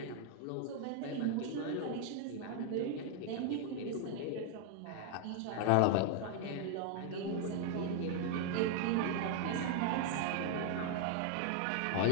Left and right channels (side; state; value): both; different; correlation 0.00